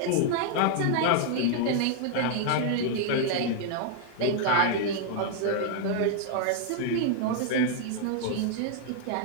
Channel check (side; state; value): both; different; correlation 0.00